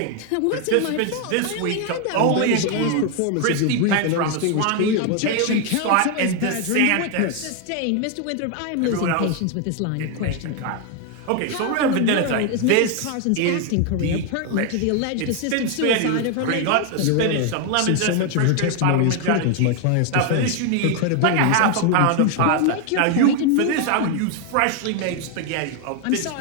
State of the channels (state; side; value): different; both; correlation 0.01